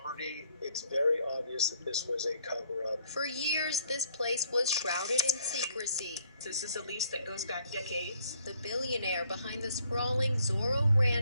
It's very obvious that this was a cover-up. For years, this place was shrouded in secrecy. This is a lease that goes back decades. The billionaire behind the sprawling Zorro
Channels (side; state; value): both; inverted; correlation -0.65